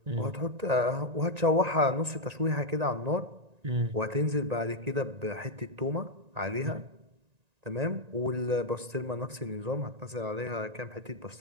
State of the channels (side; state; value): left; late; 1.9 ms